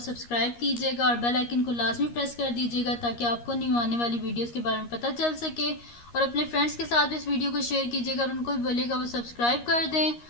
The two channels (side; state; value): right; late; 13 ms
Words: कीजिएगा और बेल आइकन को लाजमी प्रेस कर दीजिएगा ताकि आपको न्यू आने वाली वीडियोस के बारे में पता चल सके। और अपने फ्रेंड्स के साथ भी इस वीडियो को शेयर कीजिएगा और उनको भी बोलिएगा वो सब्सक्राइब कर दें।